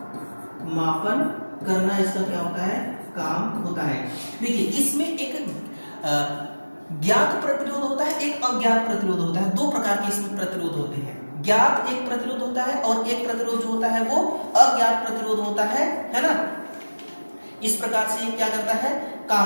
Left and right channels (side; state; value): both; inverted; correlation -1.00